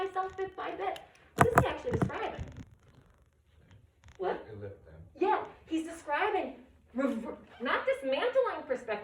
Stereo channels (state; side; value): identical; both; correlation 1.00